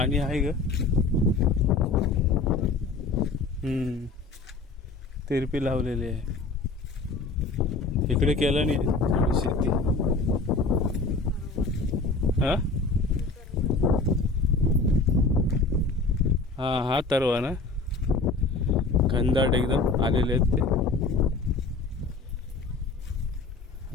आहे ग. तिरपी लावलेली आहे. इकडे केलं नाही थोडी शेती. हा हा हा तरवा ना, घनदाट एकदम आलेले आहेत ते.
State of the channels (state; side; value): quieter; right; 3.8 dB